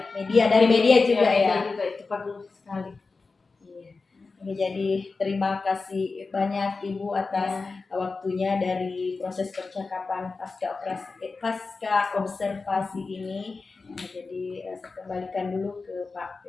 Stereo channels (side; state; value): right; quieter; 4.1 dB